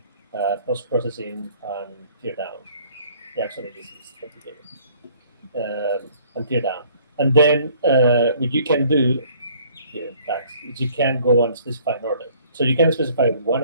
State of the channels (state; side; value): inverted; both; correlation -0.58